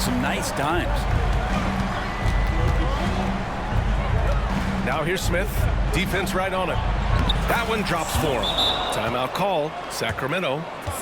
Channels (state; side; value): identical; both; correlation 1.00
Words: nice dimes. Now here's Smith, defense right on it. That one drops for him. Timeout call, Sacramento.